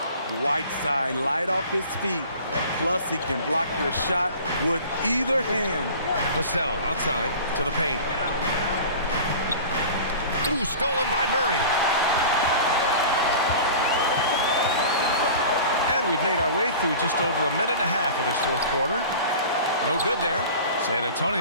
Whiteside light off his feet. Plus, he can block your shot with either hand. Vassell outside to the paint. Ooh, stolen by Murray. And we've made our way through just over a minute and a half of this fourth quarter. No good there. San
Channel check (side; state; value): both; inverted; correlation -0.40